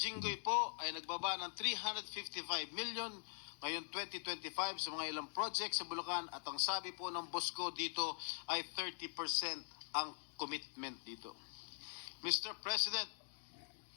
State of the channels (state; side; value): silent; right; digital silence